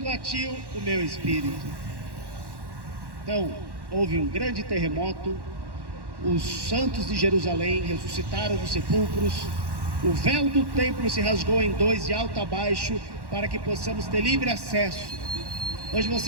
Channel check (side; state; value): left; late; 1.1 ms